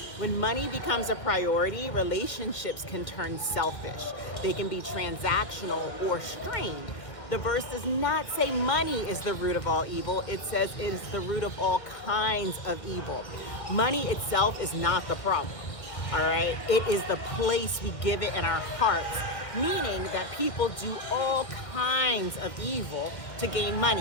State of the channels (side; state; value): right; late; 1.5 ms